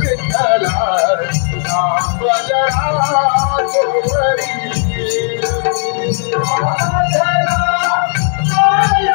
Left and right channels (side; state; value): right; silent; 61 dB below the other